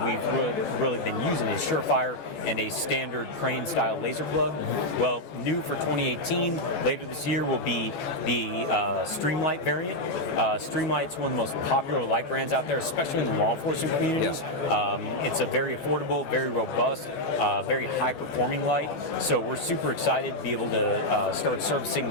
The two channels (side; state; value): right; late; 14 ms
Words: we've really been using is Surefire and a standard crane-style laser plug. Well, new for 2018, later this year, will be the Streamlight variant. Streamlight's one of the most popular light brands out there, especially in the law enforcement communities. It's a very affordable, very robust, very high-performing light. So we're super excited to be able to start servicing